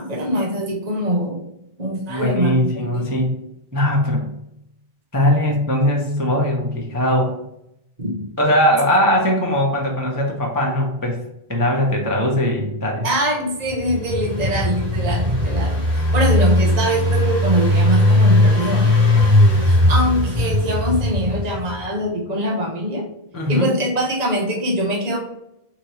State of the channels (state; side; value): late; left; 1.9 ms